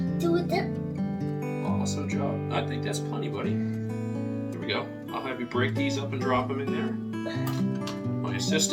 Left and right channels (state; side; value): identical; both; correlation 1.00